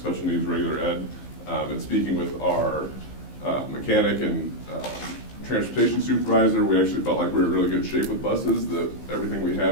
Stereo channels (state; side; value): late; right; 15 ms